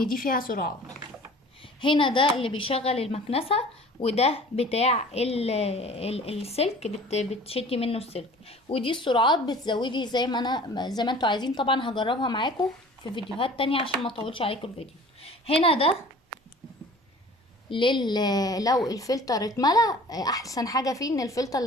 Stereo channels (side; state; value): both; normal; correlation 0.46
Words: دي فيها سرعات. هنا ده اللي بيشغل المكنسة، وده بتاع السلك بتشدي منه السلك. ودي السرعات بتزودي زي ما انتوا عايزين. طبعا هجربها معاكم في فيديوهات تانية عشان ما اطولش عليكم الفيديو. هنا ده لو الفلتر اتملى، احسن حاجه فيه ان الفلتر